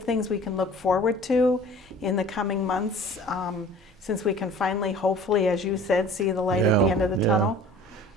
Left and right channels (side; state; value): both; normal; correlation 0.46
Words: things we can look forward to in the coming months, since we can finally, hopefully, as you said, see the light at the end of the tunnel?